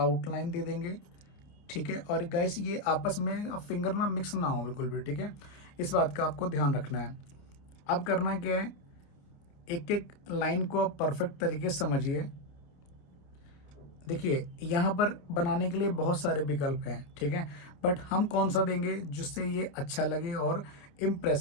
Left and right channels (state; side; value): late; right; 29 ms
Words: दे देंगे, ठीक है। और गाइस ये आपस में फिंगर ना मिक्स ना हो बिल्कुल भी, ठीक है, इस बात का आपको ध्यान रखना है। अब करना क्या है, एक एक लाइन को आप परफेक्ट तरीके से समझिए। देखिए यहाँ पर बनाने के लिए बहुत सारे विकल्प हैं, ठीक है, बट हम कौन सा देंगे जिससे ये अच्छा लगे और